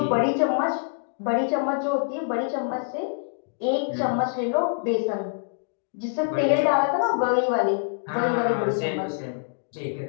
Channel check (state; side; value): silent; right; digital silence